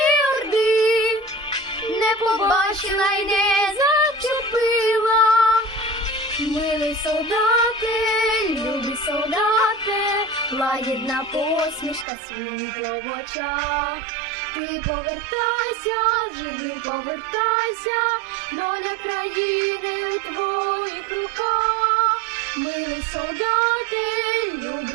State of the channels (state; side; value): drops out; left; at 12.1 s